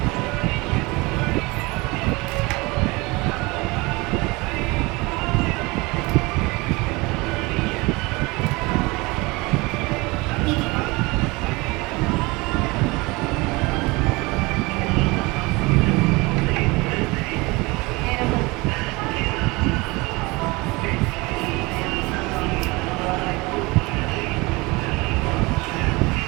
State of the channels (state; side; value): quieter; left; 24.2 dB